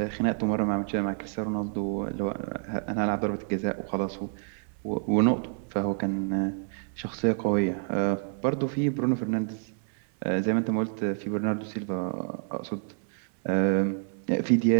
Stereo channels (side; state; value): left; silent; 58 dB below the other